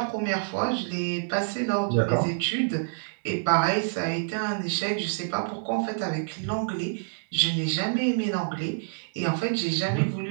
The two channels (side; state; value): left; silent; digital silence